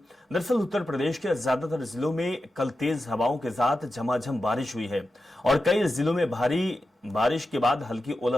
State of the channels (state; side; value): normal; both; correlation 0.91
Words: दरअसल उत्तर प्रदेश के ज्यादातर जिलों में कल तेज हवाओं के साथ झमाझम बारिश हुई है और कई जिलों में भारी बारिश के बाद हल्की